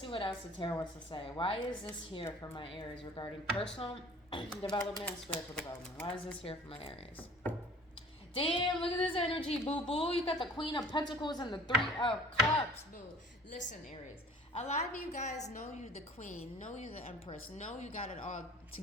what else the tarot wants to say. Why is this here for my Aries regarding personal development and spiritual development? Why is this here for my Aries? Damn, look at this energy, boo-boo. You got the Queen of Pentacles and the Three of Cups, boo. Listen, Aries. A lot of you guys know you the Queen, know you the Empress, know you got it all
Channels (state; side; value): normal; both; correlation 0.49